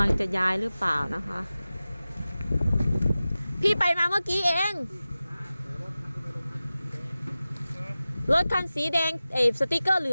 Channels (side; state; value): both; inverted; correlation -0.96